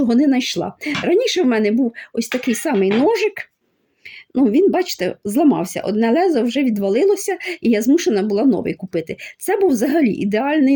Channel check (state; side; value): identical; both; correlation 1.00